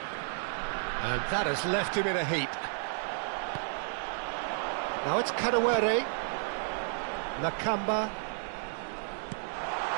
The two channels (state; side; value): silent; left; digital silence